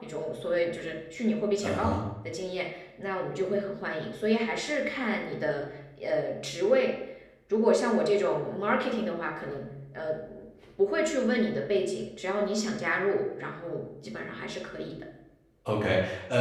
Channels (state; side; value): identical; both; correlation 1.00